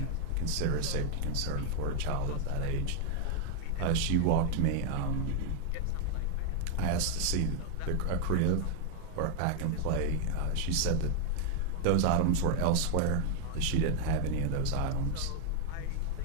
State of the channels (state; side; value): different; both; correlation 0.00